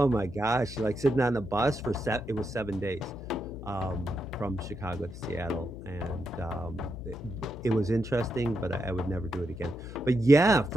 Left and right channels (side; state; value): left; noise; hum, 12 dB below the sound